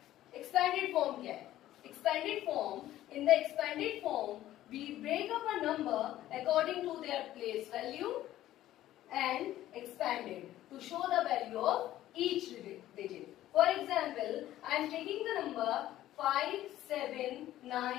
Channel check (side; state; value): right; quieter; 13.8 dB